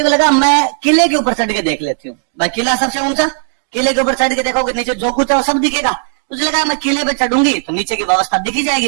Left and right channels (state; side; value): silent; left; digital silence